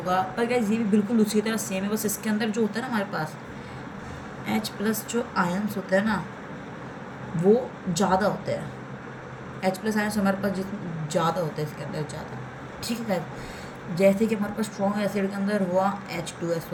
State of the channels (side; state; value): both; identical; correlation 1.00